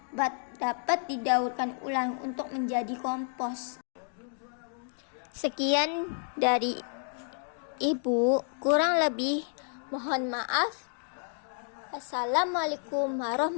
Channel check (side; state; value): right; silent; 57 dB below the other